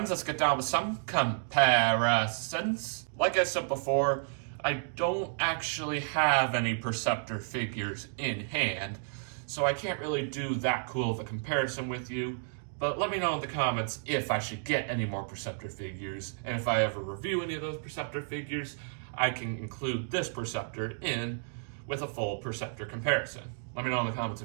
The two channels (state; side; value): silent; left; digital silence